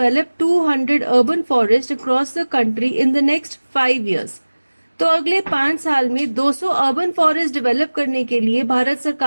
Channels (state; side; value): inverted; both; correlation -1.00